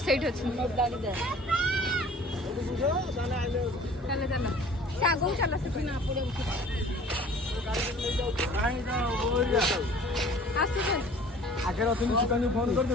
ସେଇଠି ଅଛି ଚାଲ ଚାଲ ସେ ଆଗକୁ ଚାଲ ସେଠି ନା ପଡ଼ିବ ଆସୁଛନ୍ତି ଆଗରେ ଅଛନ୍ତି ସୁକାନ୍ତି ଫୋନ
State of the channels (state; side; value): normal; both; correlation 0.49